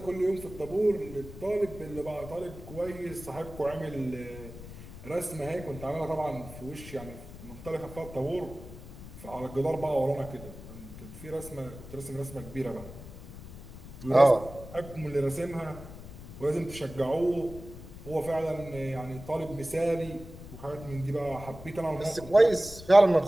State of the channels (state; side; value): noise; left; rumble, 14 dB below the sound